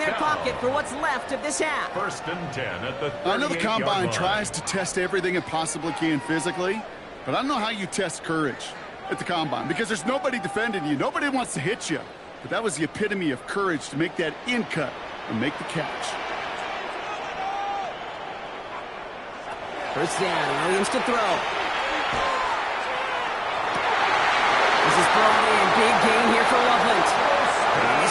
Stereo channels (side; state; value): both; identical; correlation 1.00